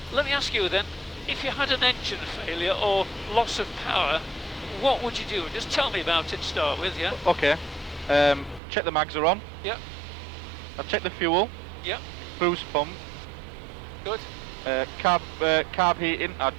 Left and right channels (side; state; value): left; drops out; at 8.6 s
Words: Let me ask you then, if you had an engine failure or loss of power, what would you do? Just tell me about it to start with, yeah? Okay. Check the mags are on. Yep, I'll check the fuel. yep, Boost pump. good, Carb heating.